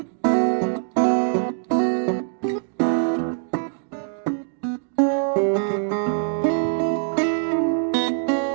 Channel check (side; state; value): left; silent; digital silence